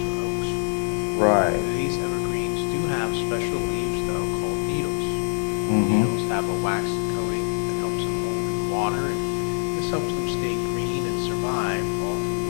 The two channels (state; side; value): silent; right; digital silence